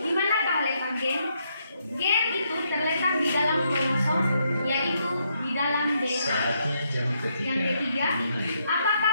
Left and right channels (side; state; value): both; inverted; correlation -0.77